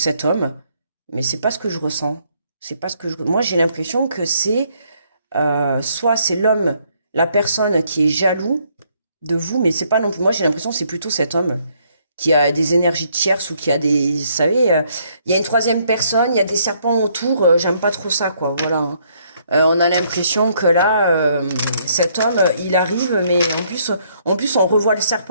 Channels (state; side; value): inverted; both; correlation -0.69